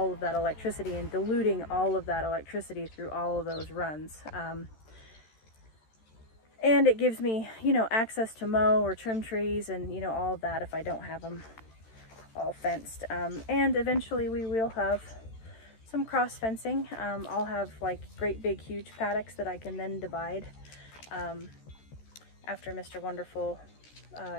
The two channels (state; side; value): late; right; 13 ms